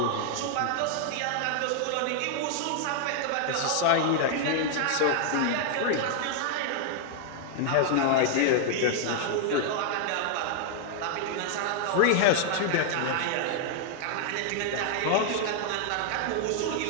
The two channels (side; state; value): both; different; correlation 0.00